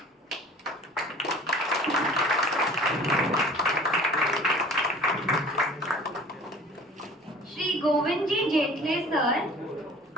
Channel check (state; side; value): normal; both; correlation 0.45